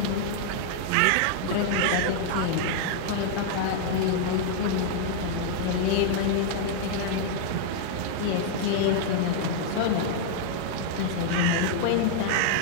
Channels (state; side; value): different; both; correlation -0.01